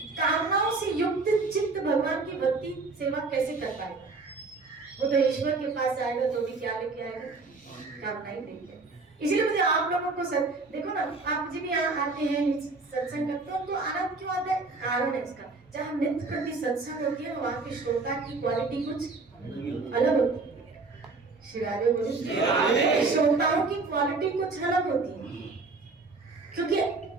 कामनाओं से युक्त चित्त भगवान की भक्ति सेवा कैसे कर पाएगा? वो तो ईश्वर के पास आएगा तो भी क्या लेके आएगा? कामना ही लेके। इसलिए मुझे आप लोगों को देखो ना, आप जी भी यहाँ आते हैं सत्संग करते हो तो आनंद क्यों आता है? कारण है इसका, जहाँ नित्य प्रति सत्संग होती है वहाँ की श्रोता की क्वालिटी कुछ अलग होती है। शिरारे बोले, श्रोताओं की क्वालिटी कुछ अलग होती है, क्योंकि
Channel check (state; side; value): quieter; left; 3.8 dB